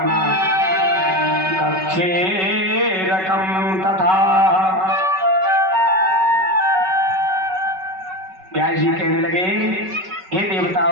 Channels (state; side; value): late; left; 5.3 ms